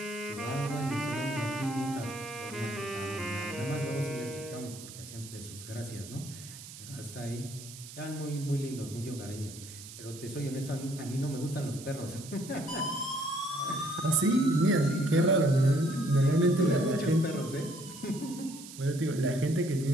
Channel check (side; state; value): right; noise; hiss, 14 dB below the sound